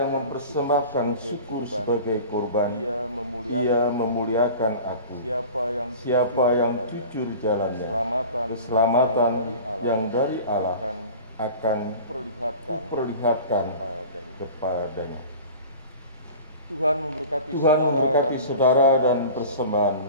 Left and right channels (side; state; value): both; inverted; correlation -0.38